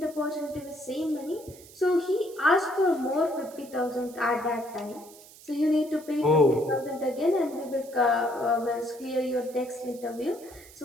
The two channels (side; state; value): right; noise; hiss, 21 dB below the sound